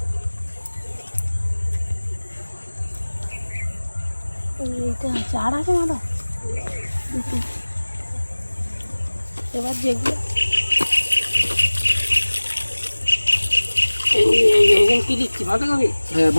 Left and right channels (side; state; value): both; inverted; correlation -1.00